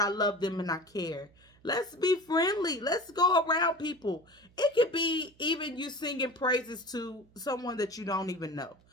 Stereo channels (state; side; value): noise; right; hum, 30 dB below the sound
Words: love them and I care. Let's be friendly. Let's go around people. It could be even you singing praises to someone that you don't even know.